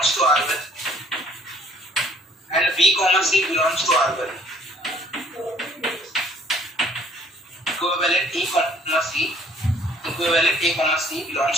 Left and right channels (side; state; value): both; normal; correlation 0.58